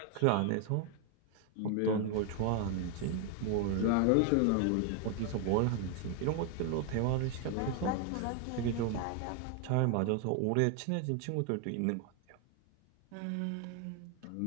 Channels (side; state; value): both; different; correlation 0.01